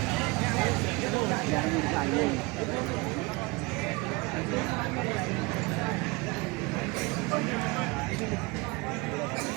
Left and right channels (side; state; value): left; quieter; 25.3 dB